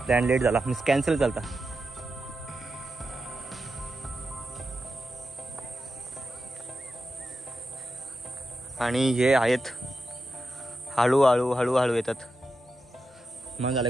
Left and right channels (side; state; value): both; normal; correlation 0.88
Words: प्लॅन लेट झाला. मीन्स कॅन्सल झाला. आणि हे आहेत हळूहळू हळूहळू येतात. मग झालं